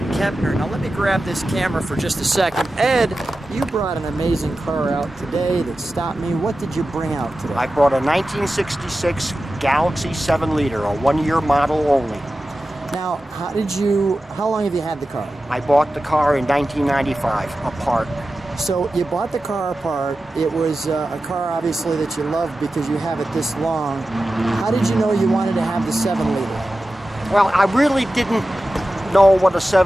Kepner. Now let me grab this camera for just a second. Ed, you brought an amazing car out today that stopped me. What did you bring out today? I brought a 1966 Galaxy 7-liter, a one-year model only. Now, how long have you had the car? I bought the car in 1995, apart. So you bought the car apart. It was a car obviously that you loved because you have it this long. How did you know you wanted to have the 7-liter? Well, I really didn't know what a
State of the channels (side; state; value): both; normal; correlation 0.93